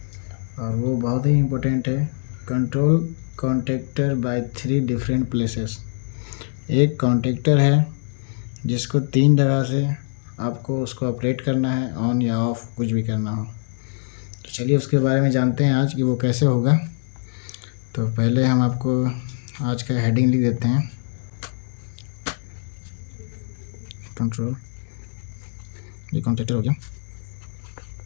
और वो बहुत ही इम्पोर्टेंट है। Control contactor by 3 different places. एक कॉन्टेक्टर है जिसको 3 जगह से आपको उसको ऑपरेट करना है, ऑन या ऑफ कुछ भी करना हो। तो चलिए उसके बारे में जानते हैं आज कि वो कैसे होगा। तो पहले हम आपको आज का हेडिंग लिख देते हैं। कंट्रोल, ये कॉन्टेक्टर हो गया।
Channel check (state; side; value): silent; right; 59 dB below the other